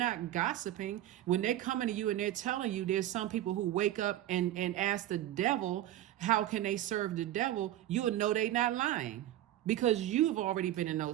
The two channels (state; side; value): quieter; left; 13.4 dB